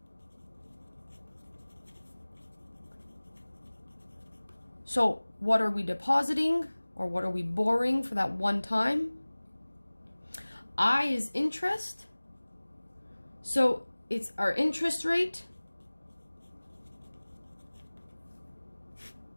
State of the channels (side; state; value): both; inverted; correlation -1.00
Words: So what are we depositing, or what are we borrowing for that one time? I is interest. So it's our interest rate